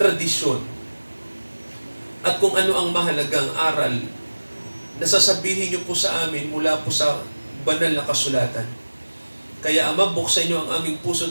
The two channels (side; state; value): both; inverted; correlation -1.00